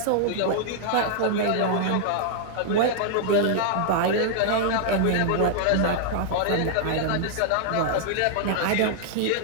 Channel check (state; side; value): different; both; correlation -0.01